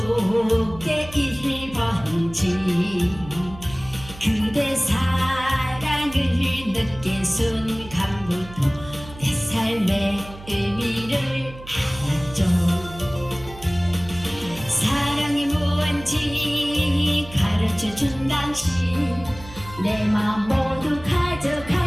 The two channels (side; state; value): right; noise; hum, 17 dB below the sound